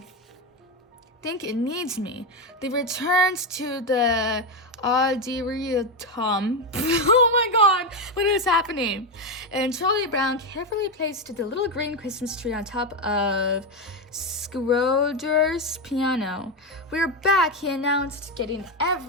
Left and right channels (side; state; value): both; normal; correlation 0.10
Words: think it needs me. They returned to the auditorium. Oh my god, what is happening? And Charlie Brown carefully placed the little green Christmas tree on top of Schroeder's piano. We're back, he announced, getting